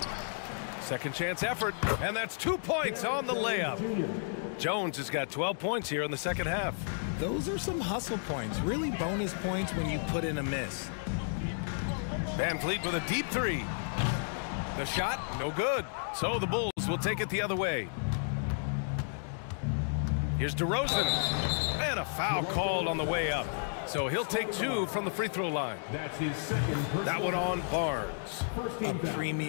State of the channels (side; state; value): right; silent; digital silence